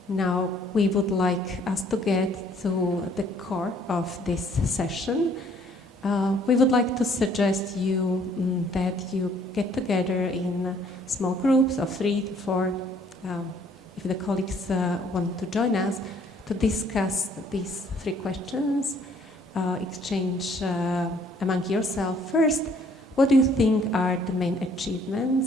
Now we would like us to get to the core of this session. We would like to suggest you that you get together in small groups of 3 to 4, if the colleagues want to join us, to discuss these 3 questions, exchange among yourself. First, what do you think are the main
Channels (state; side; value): normal; both; correlation 0.61